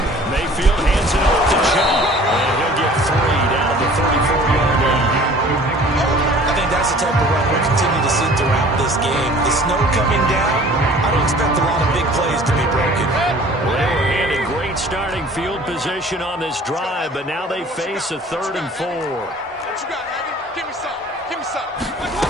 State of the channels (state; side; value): normal; both; correlation 0.49